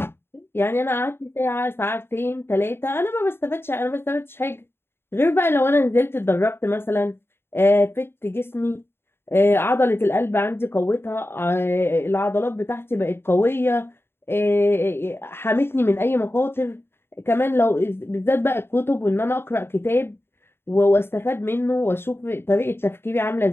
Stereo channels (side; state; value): right; late; 0.11 ms